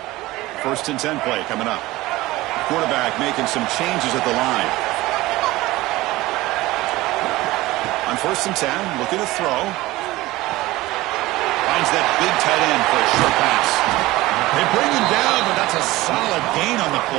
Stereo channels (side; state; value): left; quieter; 18.6 dB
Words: First and 10 play coming up. Quarterback making some changes at the line. On 1st and 10, looking to throw. Finds that big tight end for a short pass. They bring him down, but that's a solid gain on the